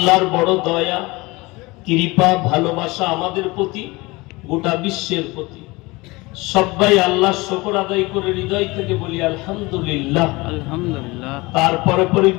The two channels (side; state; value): right; quieter; 23.2 dB